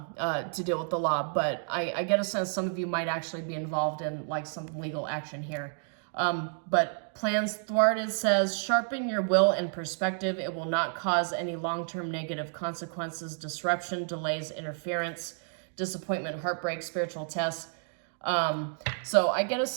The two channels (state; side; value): silent; left; 58 dB below the other